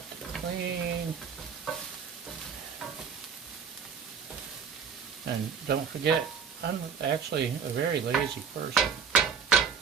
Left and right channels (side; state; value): left; quieter; 6.8 dB